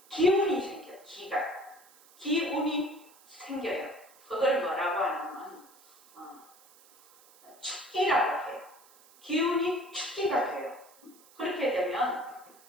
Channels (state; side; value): noise; right; hiss, 26 dB below the sound